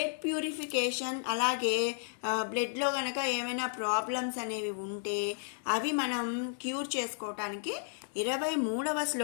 ప్యూరిఫికేషన్, అలాగే బ్లడ్లో కనుక ఏమైనా ప్రాబ్లమ్స్ అనేవి ఉంటే అవి మనం క్యూర్ చేసుకోవటానికి 23వ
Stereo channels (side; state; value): right; silent; digital silence